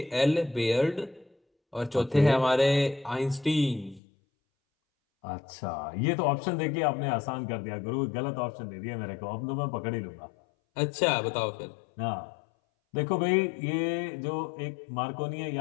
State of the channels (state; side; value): drops out; right; at 4.0 s